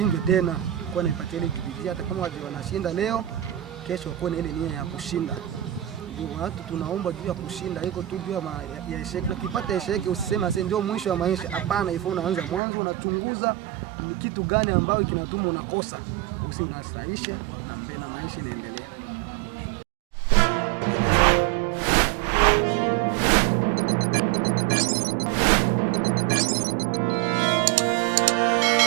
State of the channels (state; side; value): drops out; left; at 12.6 s